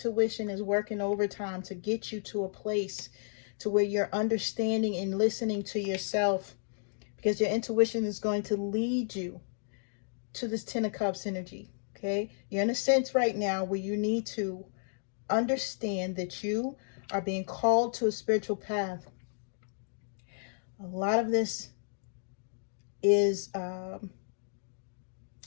is working overtime to get you to a place to where you're understanding and listening to yourself, because your intuition is going to lead you to this Ten of Cups energy, okay? You're in a sense right now where you need to understand that you are being called to a spiritual path. A lot of this is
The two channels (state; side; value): silent; right; digital silence